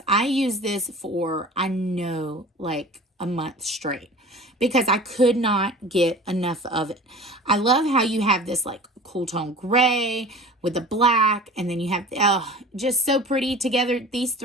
I use this for, I know, like a month straight because I could not get enough of it. I love how you have this like cool tone gray with the black, and then you have, just so pretty together. These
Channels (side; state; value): both; normal; correlation 0.39